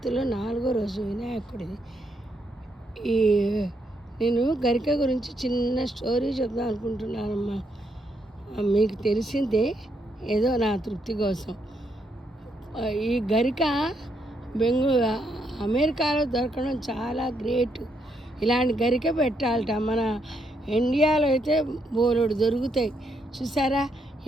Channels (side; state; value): both; normal; correlation 0.76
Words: 4వ రోజు వినాయకుడిది. ఈ నేను గరిక గురించి చిన్న స్టోరీ చెప్దాం అనుకుంటున్నానమ్మా. మీకు తెలిసిందే, ఏదో నా తృప్తి కోసం. ఈ గరిక అమెరికాలో దొరకడం చాలా గ్రేట్. ఇలాంటి గరిక పెట్టాలట. మన ఇండియాలో అయితే బోలెడు దొరుకుతాయి. చూసారా